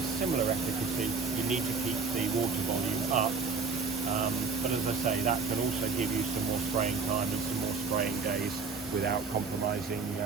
similar efficacy, you need to keep the water volume up. But as I say, that can also give you some more spraying time and some more spraying days without compromising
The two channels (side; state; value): left; quieter; 4.7 dB